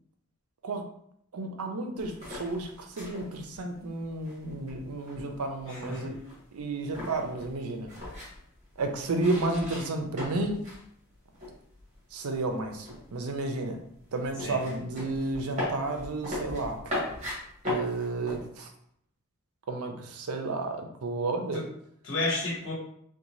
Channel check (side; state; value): both; normal; correlation 0.15